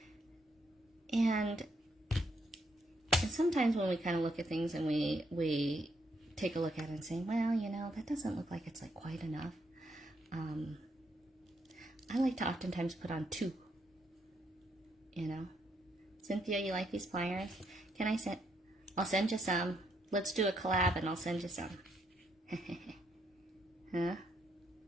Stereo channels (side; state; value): both; normal; correlation 0.75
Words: and sometimes when we kind of look at things and we take a look at it and say, well, you know, that doesn't look like it's like quite enough. I like to oftentimes put on two, you know. Cynthia, you like these pliers? I'll send you some. Let's do a collab and I'll send you some. Huh?